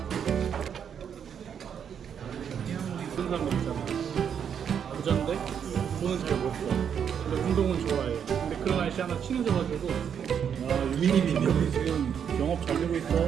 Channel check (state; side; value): quieter; left; 8.0 dB